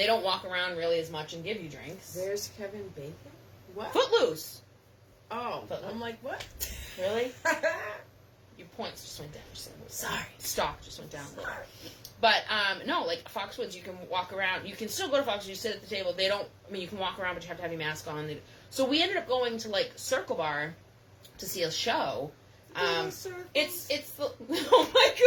don't walk around really as much and give you drinks. There's Kevin Bacon? What? Footloose! Oh, Footloose. I'm like, what? Really? Your points just went down. Sorry. Stock just went down. Sorry. But, no, like, Foxwoods, you can walk around. You can still go to Foxwoods. You sit at the table. They don't, you can walk around, but you have to have your mask on. So we ended up going to, like, Circle Bar to see a show. It's oh my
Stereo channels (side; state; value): both; identical; correlation 1.00